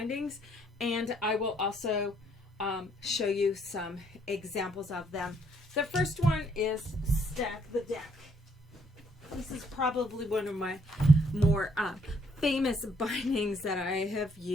and I will also show you some examples of them. The first one is Stack the Deck. This is probably one of my more famous bindings that I have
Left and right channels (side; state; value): both; normal; correlation 0.68